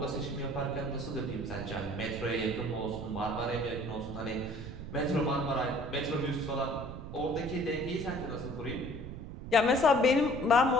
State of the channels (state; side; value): noise; right; rumble, 9 dB below the sound